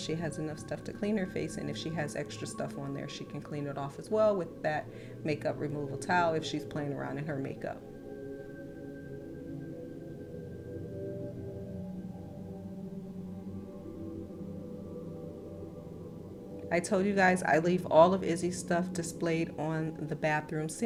has enough stuff to clean her face, and if she has extra stuff on there, she can clean it off as well with that makeup removal towel if she's playing around in her makeup. I told you guys I leave all of Izzy's stuff displayed on the bathroom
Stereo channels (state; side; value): identical; both; correlation 1.00